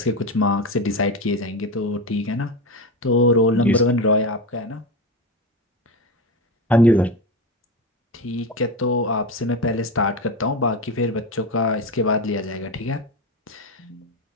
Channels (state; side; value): normal; both; correlation 0.20